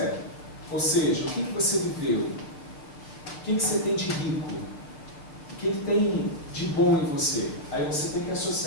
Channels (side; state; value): right; late; 6.9 ms